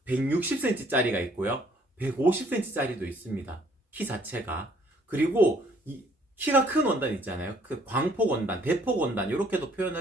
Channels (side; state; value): both; normal; correlation 0.62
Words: 160cm 짜리가 있고요. 150cm 짜리도 있습니다. 키 자체가. 그리고 키가 큰 원단 있잖아요. 그 광폭 원단, 대폭 원단 이렇게도 표현을